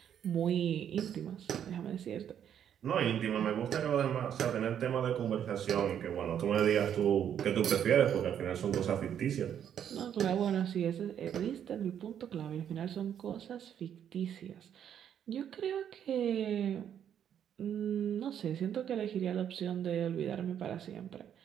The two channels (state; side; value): quieter; left; 9.2 dB